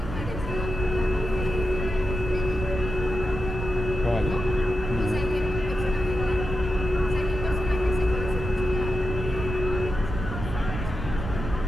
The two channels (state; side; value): noise; right; rumble, 6 dB below the sound